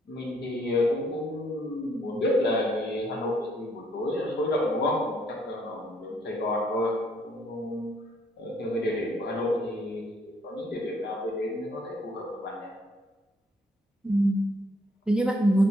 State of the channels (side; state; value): both; normal; correlation 0.67